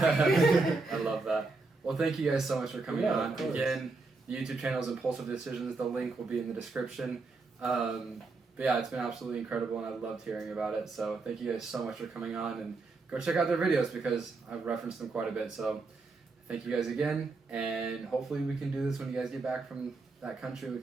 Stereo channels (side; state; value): left; quieter; 3.8 dB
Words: I love that. Well, thank you guys so much for coming on. Of course. Again, the YouTube channel is Impulsive Decisions. The link will be in the description. But yeah, it's been absolutely incredible, and I loved hearing about it. So thank you guys so much for coming on, and go check out their videos because I've referenced them quite a bit. So thank you guys again, and hopefully we can do this when you guys get back from that country. We